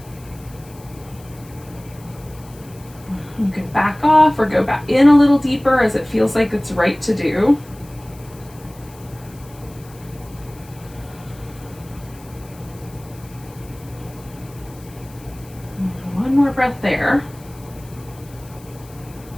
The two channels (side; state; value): left; noise; hiss, 23 dB below the sound